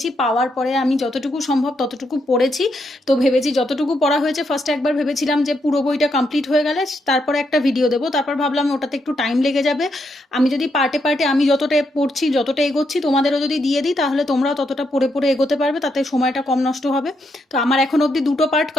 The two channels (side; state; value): both; normal; correlation 0.79